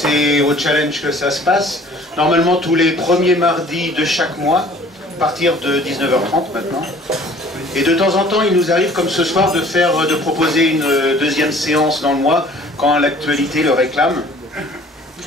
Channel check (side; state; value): both; normal; correlation 0.52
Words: au Challenge que ça se passe. Normalement tous les premiers mardis de chaque mois, à partir de 19h30 maintenant. Et de temps en temps, il nous arrive, comme ce soir, de proposer une deuxième séance dans le mois, quand l'actualité le réclame.